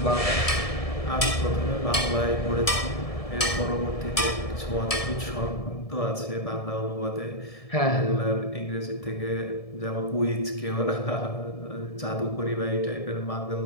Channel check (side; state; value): right; late; 1.7 ms